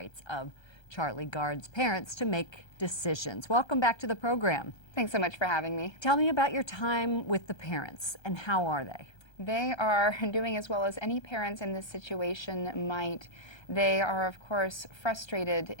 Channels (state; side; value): late; right; 1.3 ms